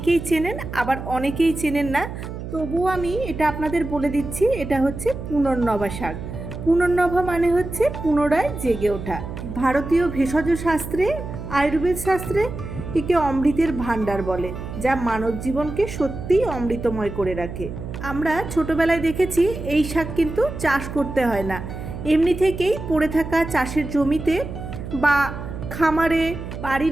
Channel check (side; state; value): right; noise; hum, 9 dB below the sound